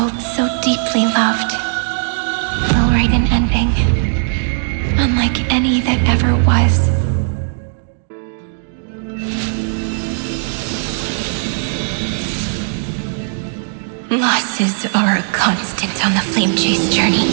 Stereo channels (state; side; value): silent; left; digital silence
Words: so deeply loved, will write an ending, unlike any that ever was. Losses are a constant on the flame chase journey.